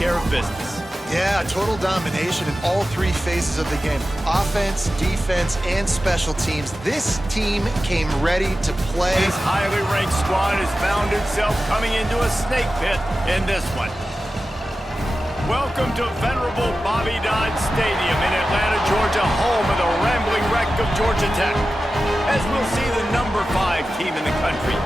of business. Yeah, total domination in all three phases of the game. Offense, defense, and special teams. This team came ready to play. This highly ranked squad has found itself coming into a snake pit in this one. Welcome to venerable Bobby Dodd Stadium in Atlanta, Georgia, home of the rambling wreck of Georgia Tech. As we'll see the number 5 team in the country,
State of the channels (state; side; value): normal; both; correlation 0.94